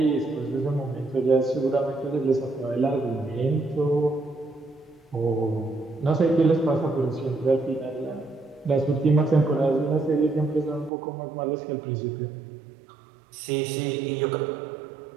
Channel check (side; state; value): left; drops out; at 10.9 s